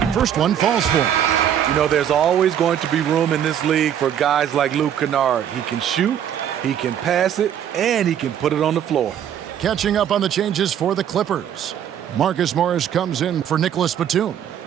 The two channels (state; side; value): quieter; left; 9.6 dB